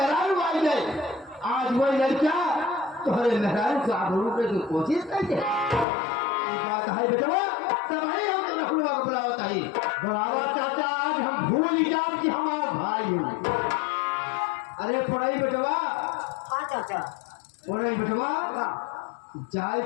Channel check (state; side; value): drops out; right; at 5.9 s